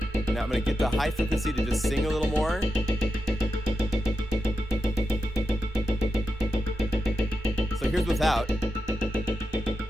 Now I'm gonna get the high frequency to just sing a little more. So here's without.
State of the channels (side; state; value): both; normal; correlation 0.88